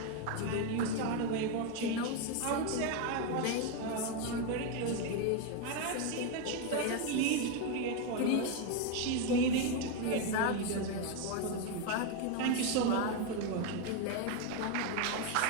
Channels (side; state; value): both; different; correlation 0.02